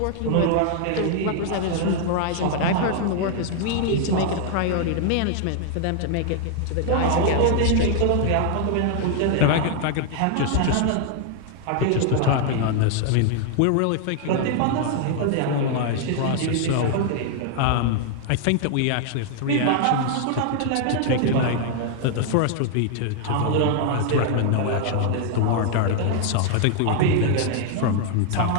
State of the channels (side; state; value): both; different; correlation 0.00